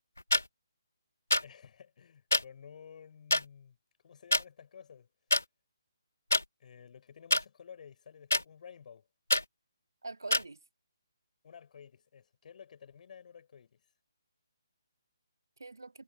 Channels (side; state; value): both; inverted; correlation -0.78